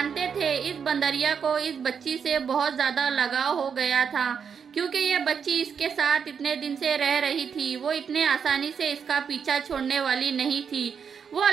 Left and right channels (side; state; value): left; quieter; 6.8 dB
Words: थे इस बंदरिया को इस बच्ची से बहुत ज़्यादा लगाव हो गया था, क्योंकि ये बच्ची इसके साथ इतने दिन से रह रही थी। वो इतने आसानी से इसका पीछा छोड़ने वाली नहीं थी। वो